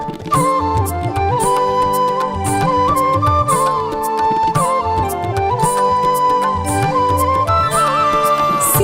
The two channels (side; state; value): both; identical; correlation 1.00